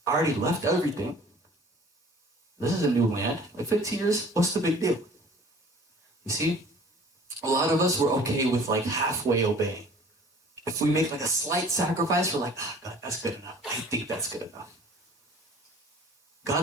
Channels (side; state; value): both; normal; correlation 0.49